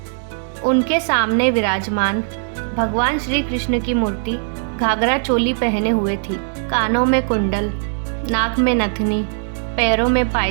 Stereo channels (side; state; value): left; silent; digital silence